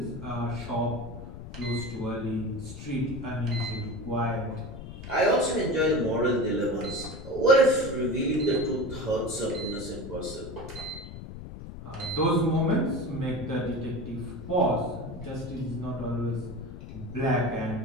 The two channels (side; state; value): left; noise; rumble, 11 dB below the sound